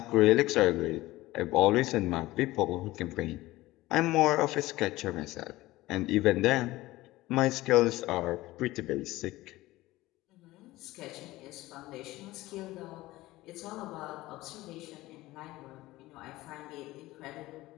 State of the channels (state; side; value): quieter; right; 18.0 dB